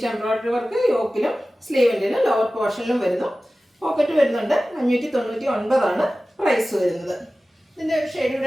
എംബ്രോയിഡറി വർക്ക് യോക്കിലും സ്ലീവിൻ്റിലും ലോവർ പോർഷനിലും വരുന്നു. പോക്കറ്റ് വരുന്നുണ്ട്. 599 ആണ് പ്രൈസ് വരുന്നത്. ഇതിൻ്റെ ഒരു ഷെയ്ഡ്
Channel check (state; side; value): normal; both; correlation 0.96